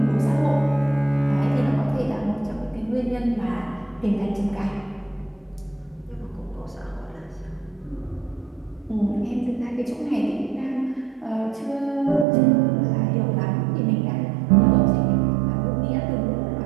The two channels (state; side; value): drops out; left; at 12.2 s